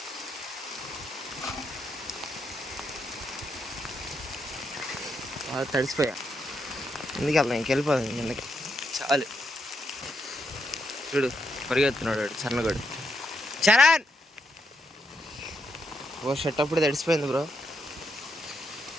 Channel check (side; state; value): both; normal; correlation 0.80